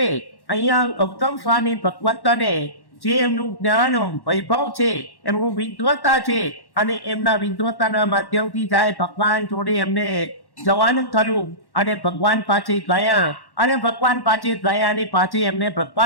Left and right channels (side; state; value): right; late; 1.1 ms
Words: અહીંયા ગૌતમ સ્વામી ભગવંતને જે એમનું જ્ઞાન વૈભવ છે, એમનું વિદ્વતા છે, અને એમના વિદ્વતાના માધ્યમથી જાય ભગવાન જોડે એમને જવાનું થયું અને ભગવાન પાસે ગયા, અને ભગવાન પાસે ગયા અને પાછી એમને